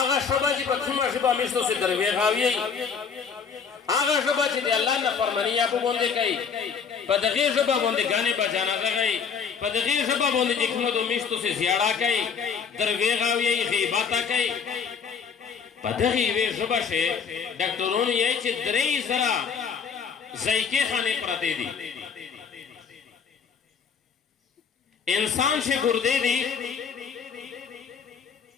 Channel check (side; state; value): right; quieter; 6.3 dB